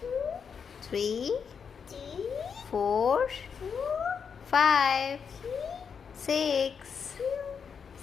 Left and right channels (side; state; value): right; quieter; 6.5 dB